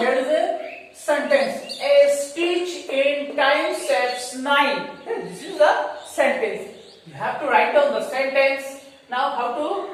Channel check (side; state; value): both; identical; correlation 1.00